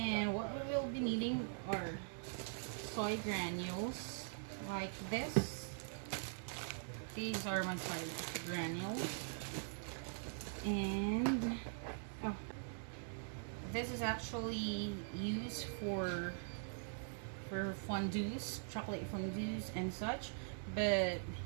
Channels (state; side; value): silent; left; digital silence